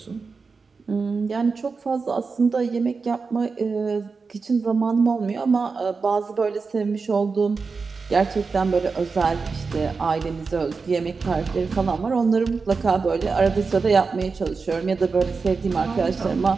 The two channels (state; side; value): quieter; left; 4.7 dB